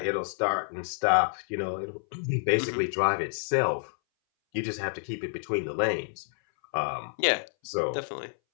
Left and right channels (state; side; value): silent; right; 59 dB below the other